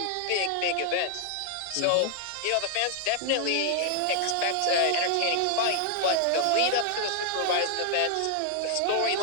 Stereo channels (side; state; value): both; different; correlation 0.00